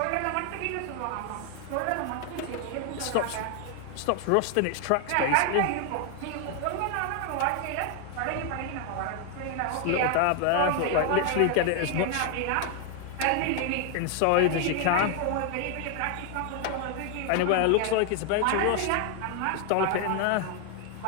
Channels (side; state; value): both; different; correlation 0.00